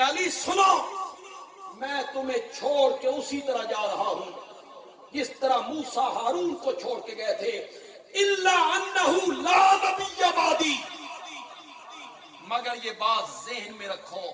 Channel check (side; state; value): both; identical; correlation 1.00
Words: علی سنو، میں تمہیں چھوڑ کے اسی طرح جا رہا ہوں جس طرح موسیٰ ہارون کو چھوڑ کے گئے تھے. الا انہ لا نبی بعدی، مگر یہ بات ذہن میں رکھو